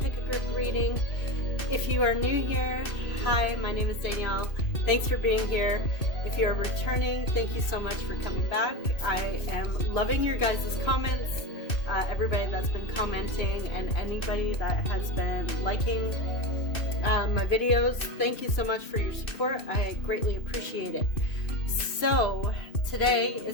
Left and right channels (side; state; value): right; late; 3.0 ms